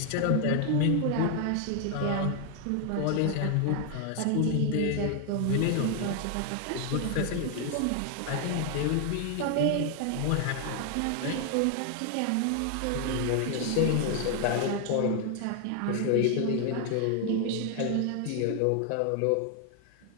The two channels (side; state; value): both; different; correlation 0.00